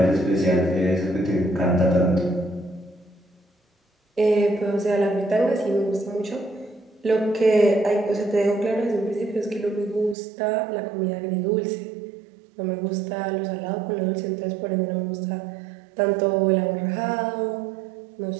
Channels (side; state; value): left; drops out; at 10.2 s